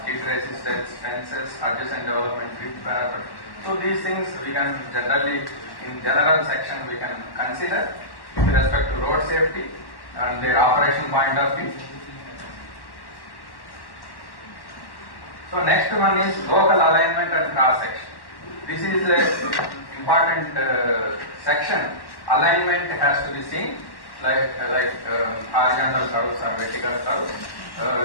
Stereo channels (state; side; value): late; right; 1.1 ms